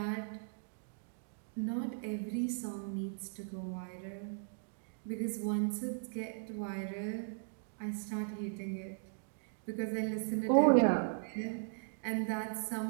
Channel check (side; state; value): left; silent; digital silence